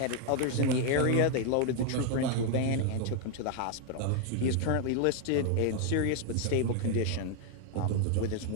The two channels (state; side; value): different; both; correlation 0.01